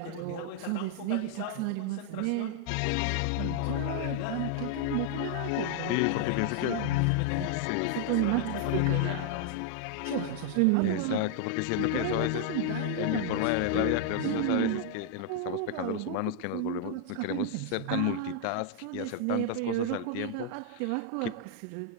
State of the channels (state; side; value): different; both; correlation 0.00